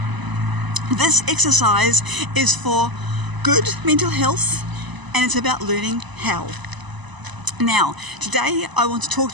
This exercise is for good mental health, and it's about learning how. Now, today I want to talk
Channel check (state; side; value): late; left; 1.0 ms